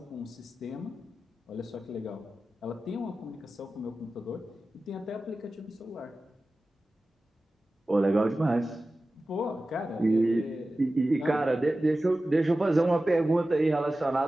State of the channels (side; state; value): both; normal; correlation 0.95